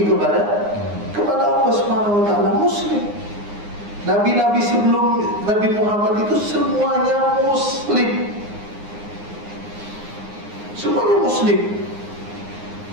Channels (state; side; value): late; left; 9.7 ms